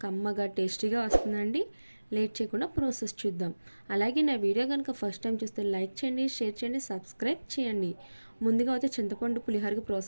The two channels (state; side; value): inverted; both; correlation -1.00